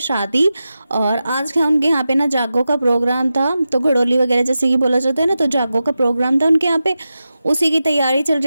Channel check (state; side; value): inverted; both; correlation -0.92